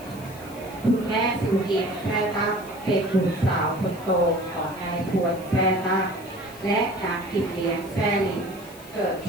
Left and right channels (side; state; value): left; noise; hiss, 20 dB below the sound